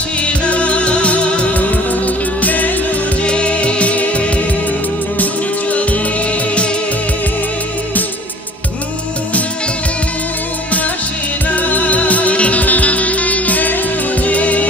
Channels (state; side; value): normal; both; correlation 0.48